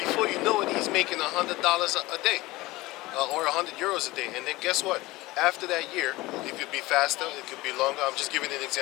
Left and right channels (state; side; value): quieter; right; 19.8 dB